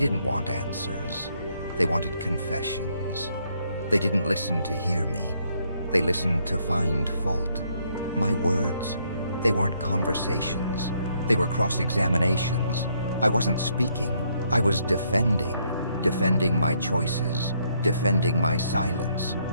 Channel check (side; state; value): both; inverted; correlation -0.71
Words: want answers. They wanted confessions. They didn't listen to hear me. They listened to find fault. My words, they weren't conversations. They were cross-examinations. I wasn't speaking. I was defending my choices, defending my silence,